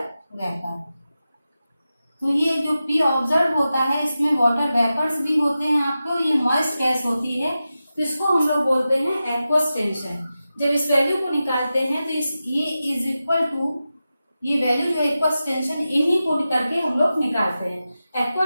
वेपर। तो ये जो P ऑब्जर्व होता है, इसमें वाटर वेपर्स भी होते हैं आपको, ये मॉइस्ट गैस होती है, तो इसको हम लोग बोलते हैं एक्वस टेंशन। जब इस वैल्यू को निकालते हैं तो ये इज इक्वल टू, ये वैल्यू जो एक्वस टेंशन, इन्हीं को करके हम लोग निकालते हैं।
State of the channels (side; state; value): both; inverted; correlation -0.93